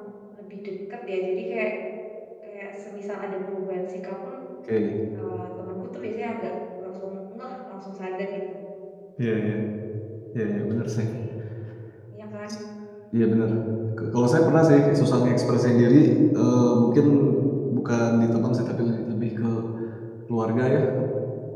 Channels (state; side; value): identical; both; correlation 1.00